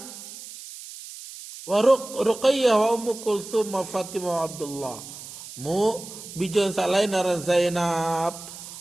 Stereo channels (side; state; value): right; noise; hiss, 14 dB below the sound